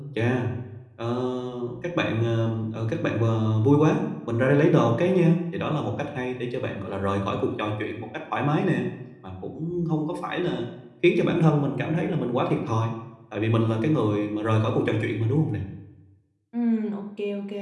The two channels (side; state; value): both; identical; correlation 1.00